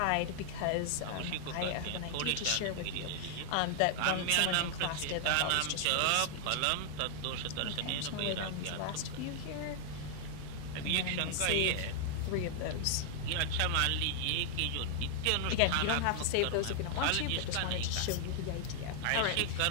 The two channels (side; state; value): both; different; correlation 0.00